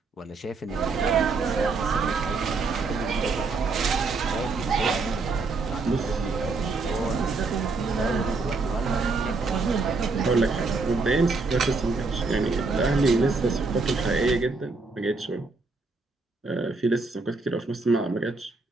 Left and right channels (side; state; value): left; quieter; 3.9 dB